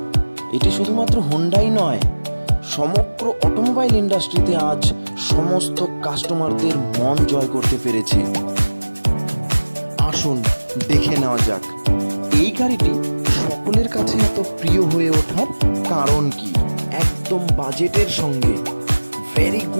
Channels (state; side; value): inverted; both; correlation -1.00